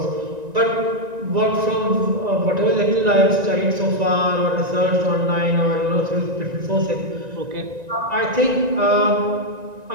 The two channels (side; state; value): left; late; 1.9 ms